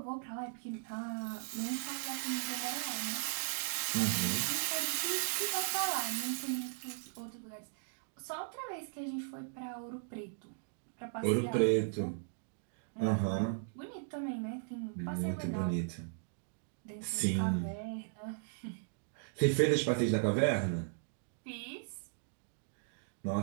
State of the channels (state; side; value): silent; left; digital silence